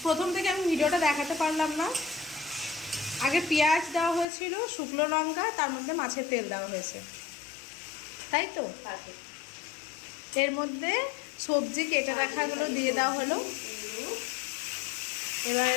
প্রথম থেকে আমি ভিডিওটা দেখাতে পারলাম না। আগে পেঁয়াজ দেওয়া হয়েছিল, শুকনো লঙ্কা, তার মধ্যে মাছের তেল দেওয়া হয়েছে, তাই তো? এর মধ্যে সবজি কেটে রাখাগুলো দিয়ে দেওয়া হলো। এবার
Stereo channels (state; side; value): drops out; right; at 4.2 s